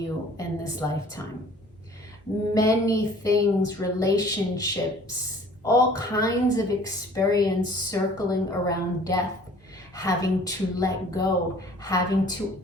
in this lifetime. Many things, relationships, all kinds of experience circling around death, having to let go, having to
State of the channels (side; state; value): both; normal; correlation 0.51